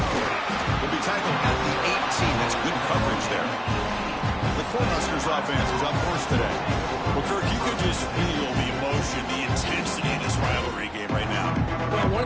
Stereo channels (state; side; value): identical; both; correlation 1.00